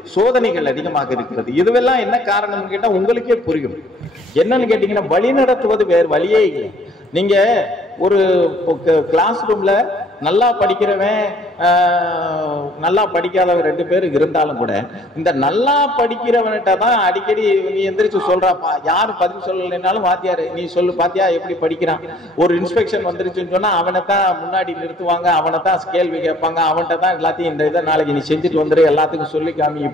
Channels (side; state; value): both; normal; correlation 0.59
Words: சோதனைகள் அதிகமாக இருக்கிறது. இதுவெல்லாம் என்ன காரணம் கேட்டா உங்களுக்கே புரியும். என்னன்னு கேட்டீங்கன்னா வழி நடத்துவது வேறு வழியே இல்லை. நீங்க ஒரு கிளாஸ் ரூம்ல நல்லா படிக்கிறவன் நல்லா படிக்காதவன் 2 பேர் இருந்தாலும் கூட இந்த நல்லா படிக்கிறவன்கிட்ட தான் அடிக்கடி நீ எந்திரிச்சு சொல்றாப்பா. யாரு பதில் சொல்லலைன்னாலும் வாத்தியாரு நீ சொல்லு பாத்தியா எப்படி படிக்கிறான். ஒரு இன்ஸ்பெக்ஷன் வந்துருச்சுன்னு சொன்னா அவனைத்தான் முன்னாடி நிறுத்துவாங்க, அவனைத்தான் கேள்வி கேட்பாங்க, அவன்கிட்ட தான் எல்லாத்தையும் இந்த இதை நாளைக்கு நீ செஞ்சுட்டு வந்துரு எல்லாத்துக்கும் சொல்லி காமி